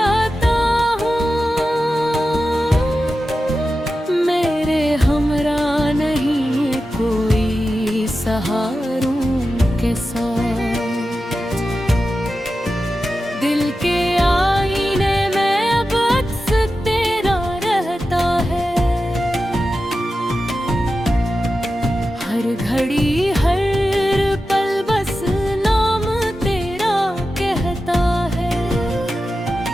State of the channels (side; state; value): both; normal; correlation 0.92